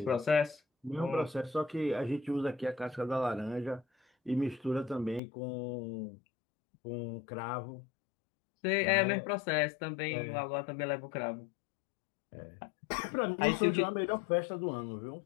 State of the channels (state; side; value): drops out; right; at 5.2 s